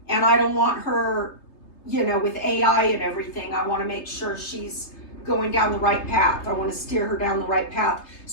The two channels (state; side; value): late; right; 3.3 ms